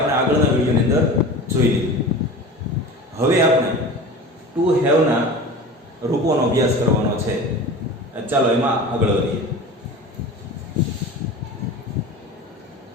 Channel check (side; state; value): both; normal; correlation 0.35